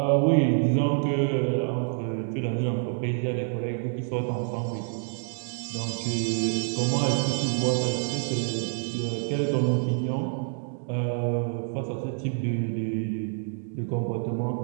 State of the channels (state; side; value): silent; left; 60 dB below the other